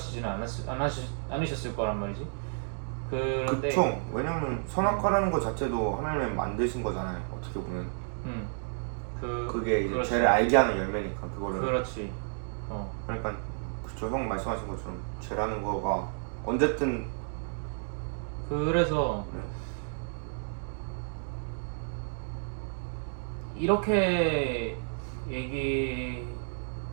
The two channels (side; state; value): left; silent; digital silence